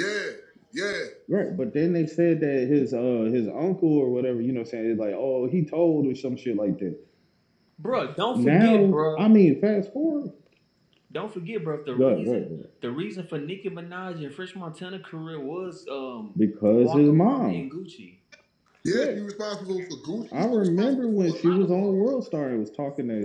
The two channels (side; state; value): both; identical; correlation 1.00